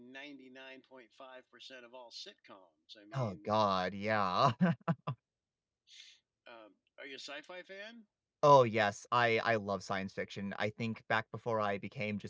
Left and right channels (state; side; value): identical; both; correlation 1.00